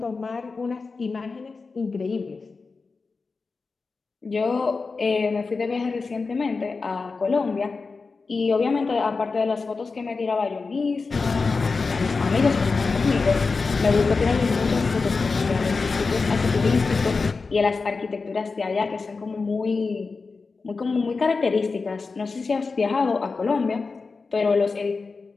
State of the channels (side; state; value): right; quieter; 4.3 dB